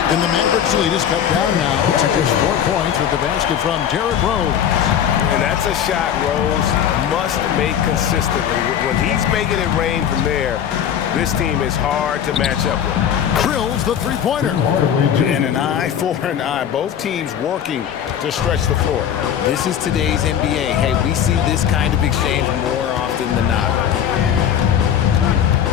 and the Mavericks lead is cut down now to just 4 points with the basket from Derrick Rose. And that's a shot Rose must make consistently. When he's making it rain from there, this team is hard to match up with. Drills the 3-pointer. And an eye for an eye. Both teams working to stretch the floor. This is today's NBA. Hey, we see this kind of exchange more often than not.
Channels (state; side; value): quieter; right; 9.2 dB